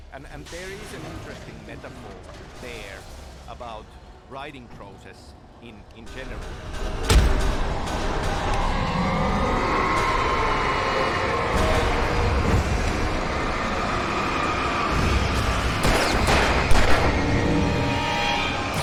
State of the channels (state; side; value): identical; both; correlation 1.00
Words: And there is an interesting metaphor there about writing process in general.